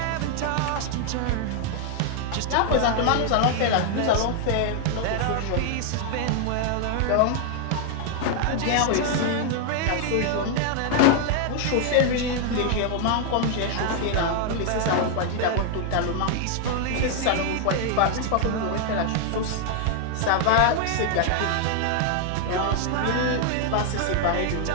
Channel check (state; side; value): different; both; correlation 0.00